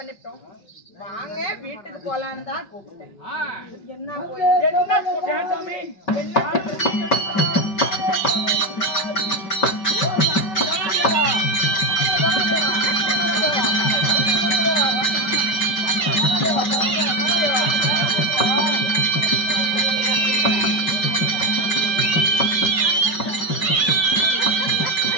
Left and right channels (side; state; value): right; late; 5.2 ms